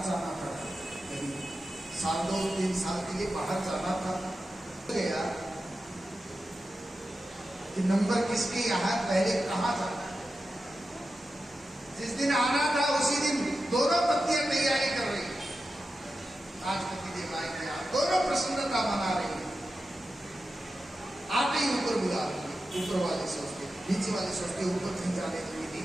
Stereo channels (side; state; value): both; normal; correlation 0.91